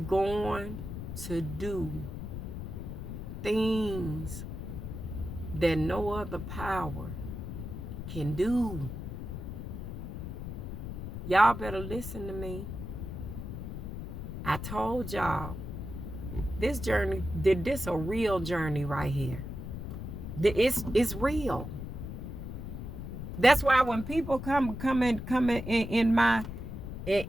to do things that no other power can do. Y'all better listen to me. I told y'all, this journey, this a real journey right here. It's real. That's why when people come in my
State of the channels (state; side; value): noise; left; rumble, 7 dB below the sound